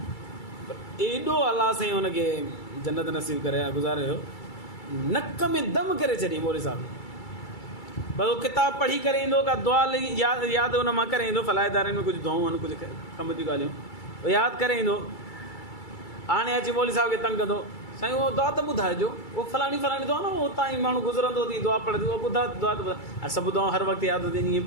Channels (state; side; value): late; right; 2.3 ms